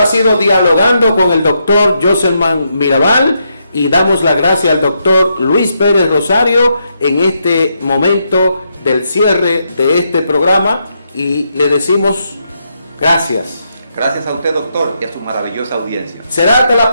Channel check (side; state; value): both; inverted; correlation -0.80